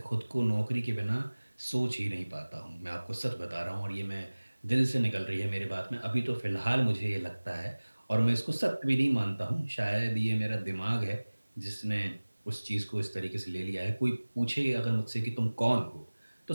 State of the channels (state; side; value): inverted; both; correlation -1.00